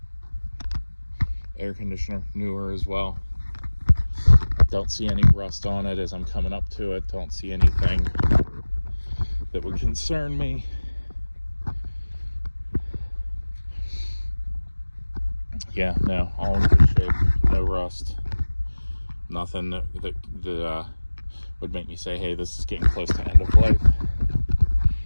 air conditioner, newer as well. Don't see any rust on it as I'm coming up to it. Don't see anything that would concern me. Yeah, no, all in good shape. No rust. Nothing that would make me say, hey, this is getting close to end of life.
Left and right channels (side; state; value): both; inverted; correlation -1.00